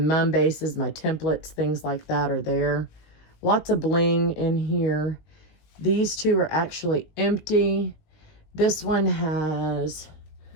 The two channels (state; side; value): late; right; 19 ms